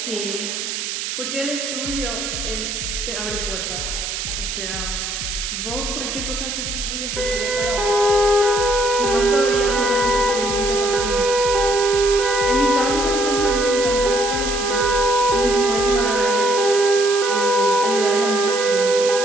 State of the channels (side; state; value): right; noise; hiss, 4 dB below the sound